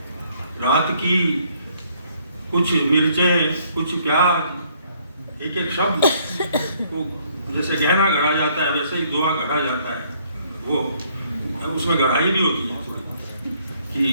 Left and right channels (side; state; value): both; inverted; correlation -0.66